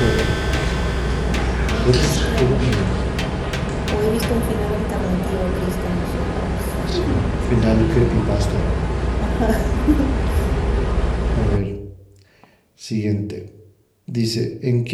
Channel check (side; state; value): both; identical; correlation 1.00